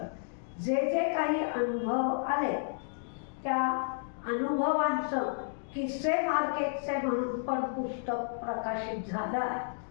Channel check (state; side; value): silent; right; digital silence